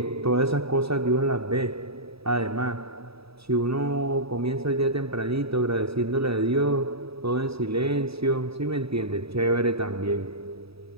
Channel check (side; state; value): left; late; 0.77 ms